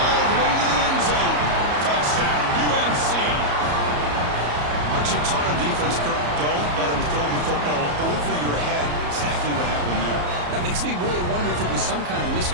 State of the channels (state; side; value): late; left; 34 ms